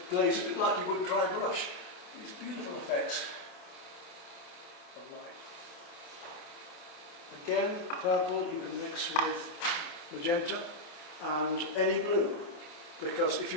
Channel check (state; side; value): late; right; 28 ms